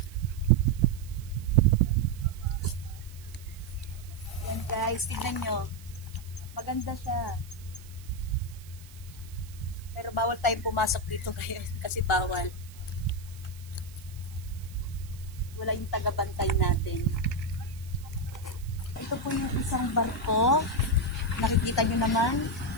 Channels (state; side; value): noise; right; hiss, 21 dB below the sound